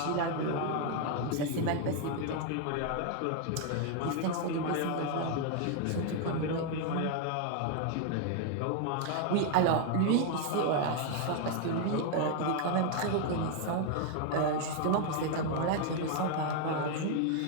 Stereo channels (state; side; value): different; both; correlation 0.00